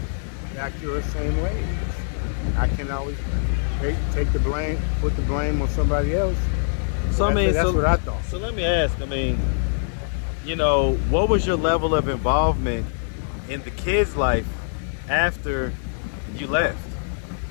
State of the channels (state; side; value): silent; right; digital silence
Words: back to her same ways. I can always take the blame, put the blame on somebody else. So I mean, that's what I thought. So let me ask. I mean, you know, what was your level of involvement in the kids' life after you left?